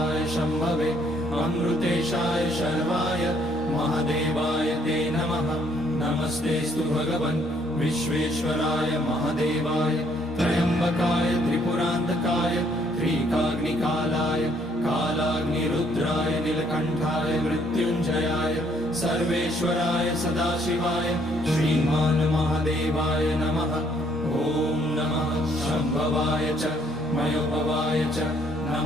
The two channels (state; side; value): normal; both; correlation 0.67